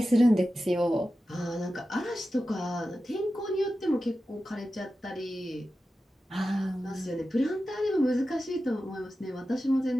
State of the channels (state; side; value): normal; both; correlation 0.93